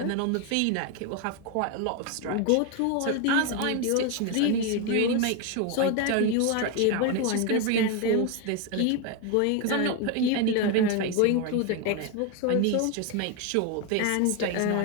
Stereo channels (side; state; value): both; different; correlation 0.02